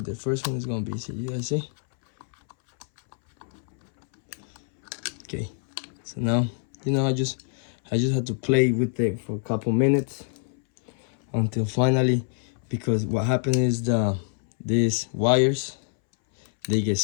the first one is gonna be. See, you guys see? Okay. So now, you know, I just had to play with it for a couple minutes until finally, because what happened is these wires, they get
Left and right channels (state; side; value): silent; right; 61 dB below the other